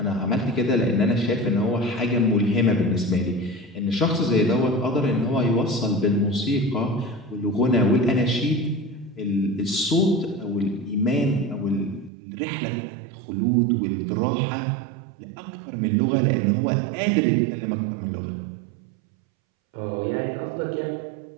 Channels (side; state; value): left; drops out; at 12.1 s